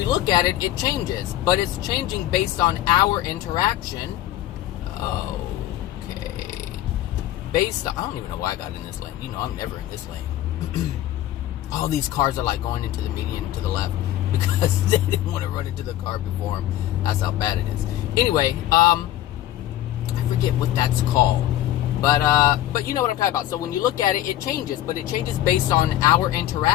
look at it, it changes, but it's changing based on our interaction. Okay. Based on, I don't even know why I got in this lane. I'm never in this lane. All these cars are like going into the median to the left because they didn't want to run into the car before them. That's how bad it is. Anyway, I forget what that's called. But you know what I'm talking about. So when you look at it, it changes, but it changes based on our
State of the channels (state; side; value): quieter; right; 13.5 dB